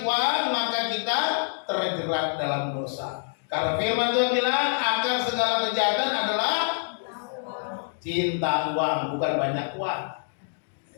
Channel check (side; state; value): right; silent; digital silence